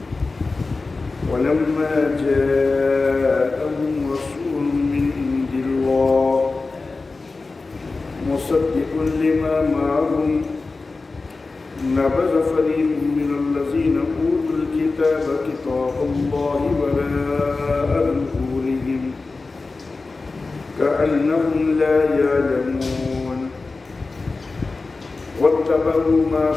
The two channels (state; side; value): quieter; right; 3.7 dB